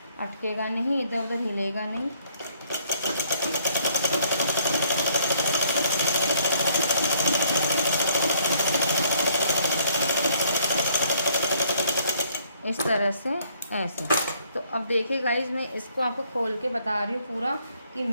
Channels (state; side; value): inverted; both; correlation -0.64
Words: अटकेगा नहीं, इधर उधर हिलेगा नहीं। इस तरह से ऐसे। तो अब देखिए गाइज, मैं इसको आपको खोल के बता रही हूँ पूरा कि